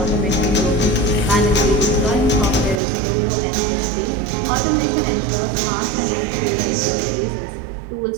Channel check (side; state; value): left; drops out; at 2.8 s